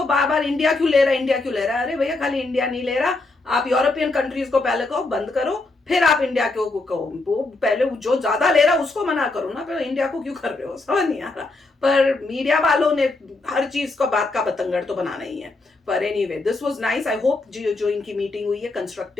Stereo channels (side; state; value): right; quieter; 3.2 dB